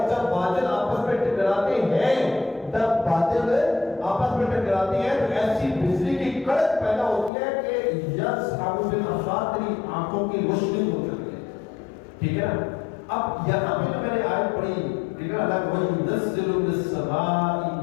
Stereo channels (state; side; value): drops out; right; at 7.3 s